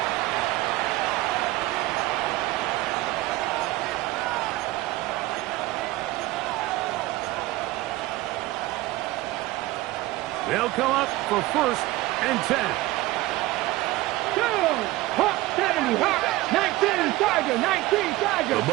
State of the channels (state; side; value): quieter; left; 18.3 dB